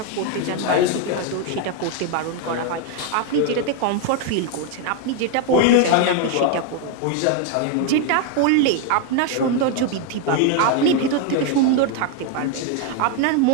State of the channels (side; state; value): both; different; correlation 0.01